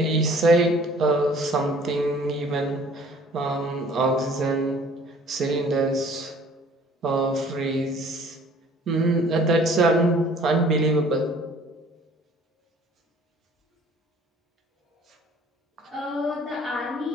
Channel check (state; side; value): normal; both; correlation 0.53